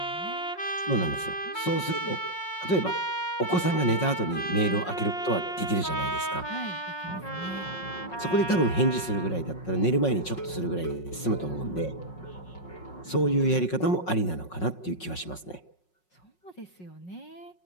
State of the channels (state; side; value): late; right; 5.5 ms